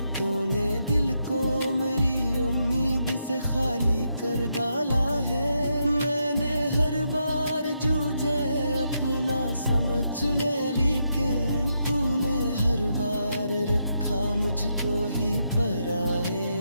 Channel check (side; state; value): both; inverted; correlation -0.81